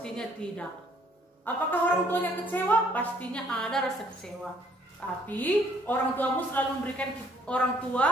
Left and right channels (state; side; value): normal; both; correlation 0.63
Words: tidak. Apakah orang tuanya kecewa? Pastinya ada rasa kecewa. Tapi orang tua